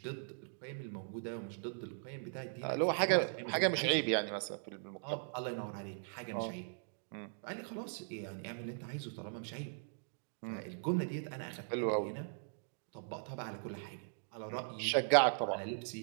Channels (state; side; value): silent; left; digital silence